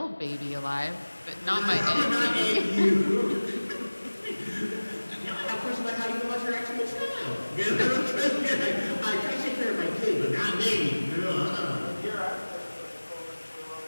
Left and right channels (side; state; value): both; inverted; correlation -1.00